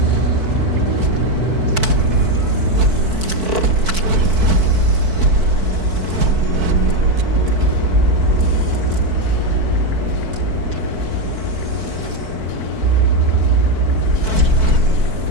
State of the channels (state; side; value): late; left; 4.5 ms